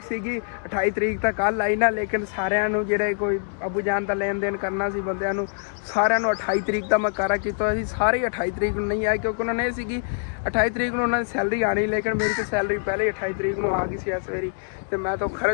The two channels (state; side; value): silent; right; digital silence